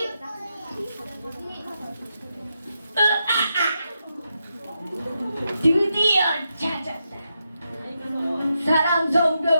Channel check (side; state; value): both; inverted; correlation -0.85